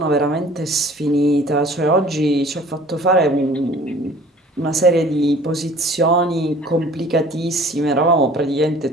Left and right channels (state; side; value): normal; both; correlation 0.50